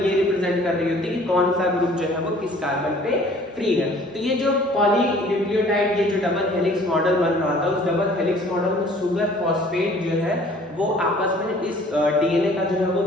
ये रिप्रेजेंट कर रही होती है कि कौन सा ग्रुप जो है वो किस कार्बन पे फ्री है। तो ये जो पॉलीन्यूक्लियोटाइड, ये जो डबल हेलिक्स मॉडल बन रहा था, उस डबल हेलिक्स मॉडल में शुगर फॉस्फेट जो है वो आपस में इस डीएनए का जो है वो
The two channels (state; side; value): normal; both; correlation 0.53